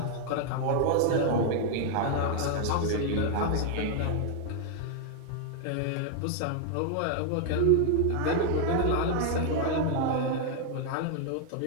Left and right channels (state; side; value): different; both; correlation 0.00